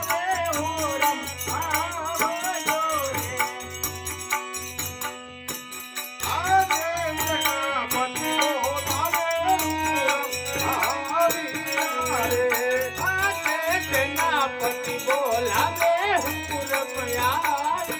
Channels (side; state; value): both; identical; correlation 1.00